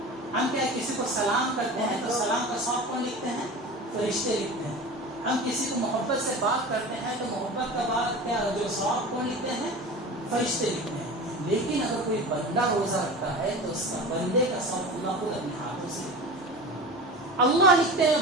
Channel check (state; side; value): normal; both; correlation 0.33